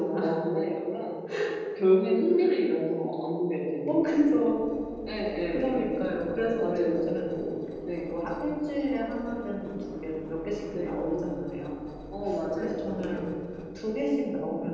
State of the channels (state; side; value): identical; both; correlation 1.00